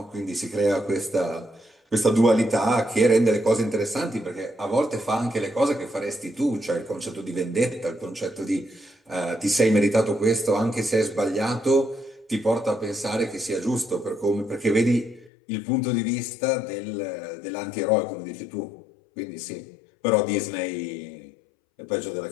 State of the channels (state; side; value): drops out; right; at 15.3 s